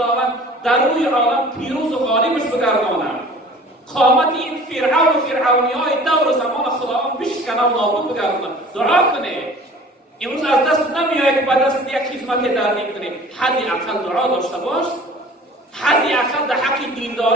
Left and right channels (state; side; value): normal; both; correlation 0.46